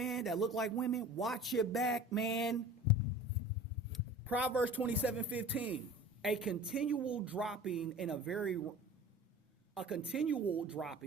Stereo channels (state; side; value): normal; both; correlation 0.40